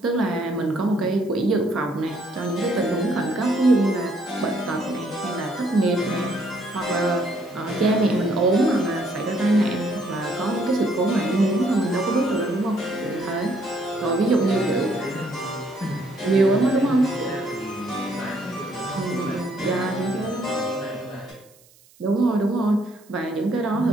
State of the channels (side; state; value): right; noise; hiss, 29 dB below the sound